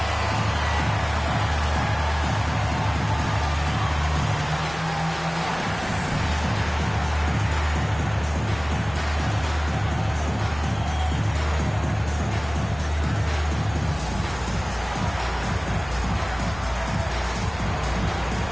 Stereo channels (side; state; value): right; noise; rumble, 16 dB below the sound